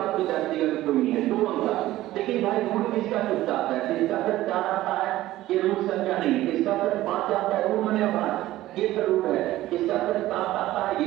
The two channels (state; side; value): quieter; left; 15.6 dB